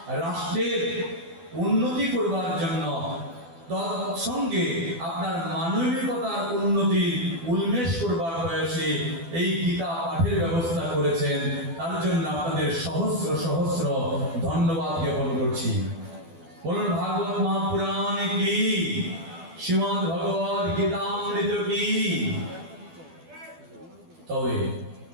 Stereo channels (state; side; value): late; left; 12 ms